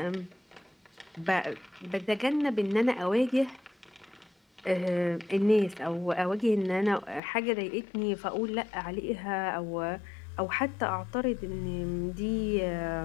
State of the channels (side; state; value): right; drops out; at 7.2 s